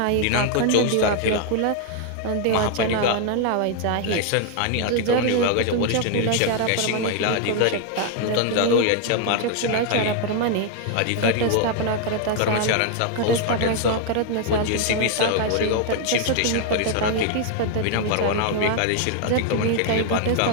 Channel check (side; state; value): both; different; correlation 0.00